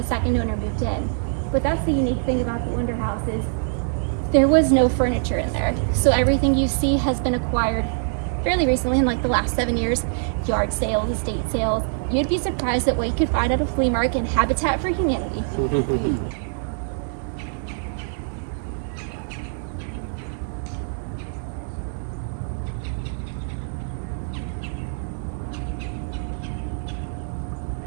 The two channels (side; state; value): left; silent; digital silence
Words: second owner moved in. But that's the unique thing about the Wonder House is there was no furniture in there. So everything you see has been acquired fairly recently in like the last 7 years. Yard sales, estate sales. You'd be surprised at what you could find at a flea market and Habitat for Humanity.